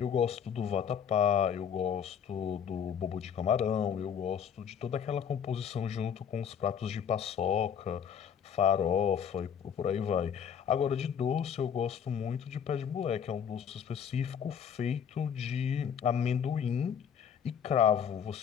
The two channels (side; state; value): right; quieter; 7.9 dB